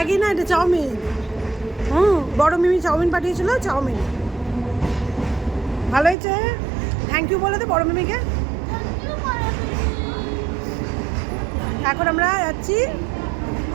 না, এটা চাউমিন। বড় মিমি চাউমিন পাঠিয়েছিল, চাউমিন ভালো হয়েছে। থ্যাংক ইউ বলে দে বড় মিমিকে। এখন আমরা যাচ্ছি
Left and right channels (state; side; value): drops out; left; at 6.2 s